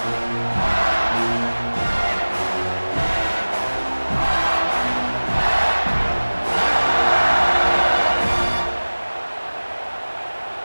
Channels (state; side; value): inverted; both; correlation -1.00